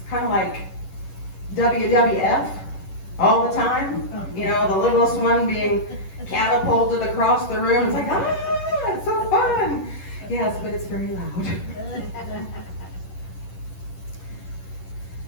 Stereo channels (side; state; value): right; late; 11 ms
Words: kind of like WWF all the time. You know, the littlest one being catapulted across the room. It's like, it's so fun. Yes, but it's very loud.